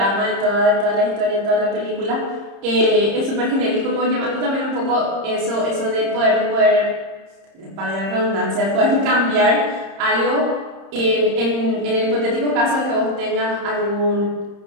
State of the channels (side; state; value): left; late; 30 ms